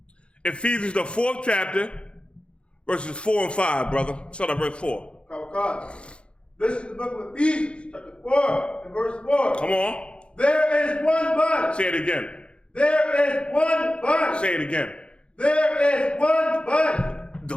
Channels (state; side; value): late; right; 0.057 ms